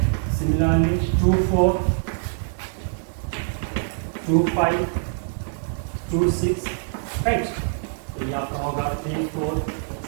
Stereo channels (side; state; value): left; silent; 63 dB below the other